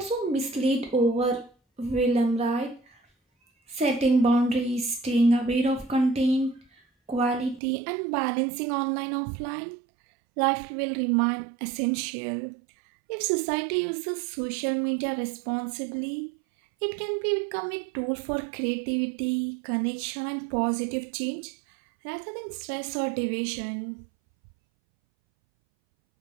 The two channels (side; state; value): left; drops out; at 7.6 s